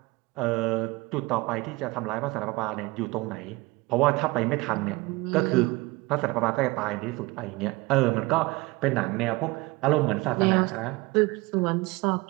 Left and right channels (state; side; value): quieter; left; 22.9 dB